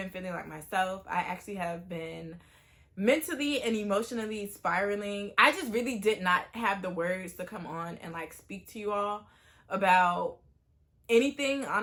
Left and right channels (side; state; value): both; identical; correlation 1.00